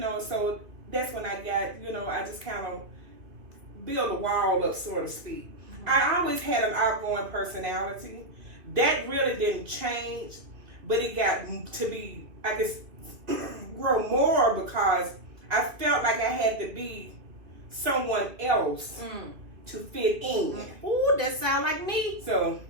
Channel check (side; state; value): left; late; 2.5 ms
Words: so that's when I got, I just kind of build a wall up, so to speak. I always had an outgoing personality. That really didn't change, but it got to be, I guess, grow more because I felt like I had to be someone else to fit in. Ooh, that sound like me. So